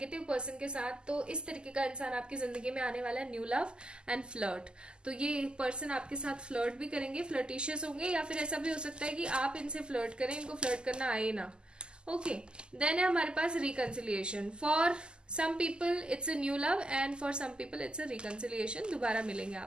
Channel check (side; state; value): left; late; 0.048 ms